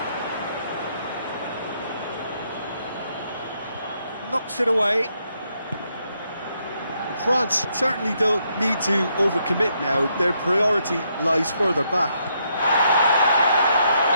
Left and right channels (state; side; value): inverted; both; correlation -0.76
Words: Knocks it away. France certainly don't need to overcommit now. Their priority lies further back.